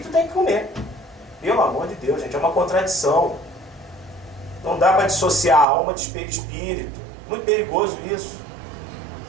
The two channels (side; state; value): left; drops out; at 5.7 s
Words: tem que comer. Pelo amor de Deus, gente, é uma contradição. Não dá para dissociar a alma de perispírito. Muito perigoso isso.